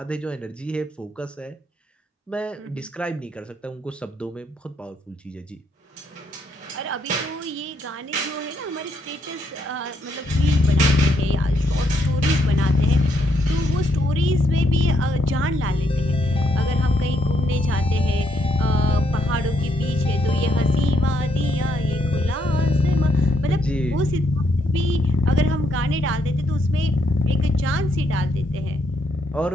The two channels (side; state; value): both; normal; correlation 0.75